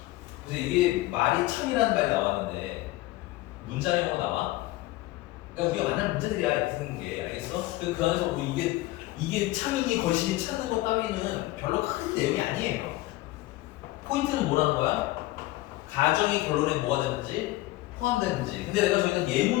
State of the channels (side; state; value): right; quieter; 18.2 dB